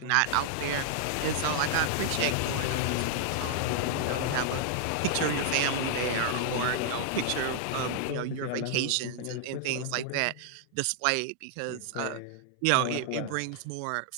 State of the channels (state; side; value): different; both; correlation -0.01